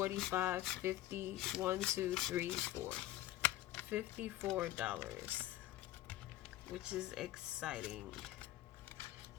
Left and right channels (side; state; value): right; quieter; 14.8 dB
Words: 50, 1, 2, 3, 4. $54. Which is exciting.